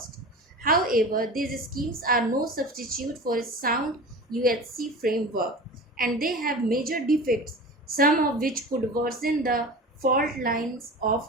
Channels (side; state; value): both; normal; correlation 0.34